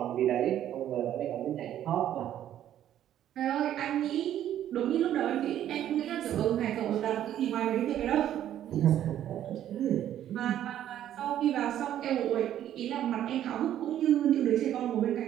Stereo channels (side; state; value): left; quieter; 11.4 dB